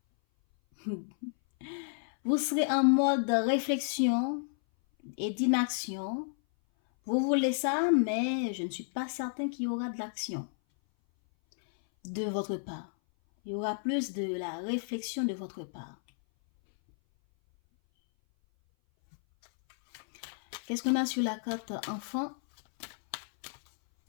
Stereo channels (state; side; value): silent; right; 57 dB below the other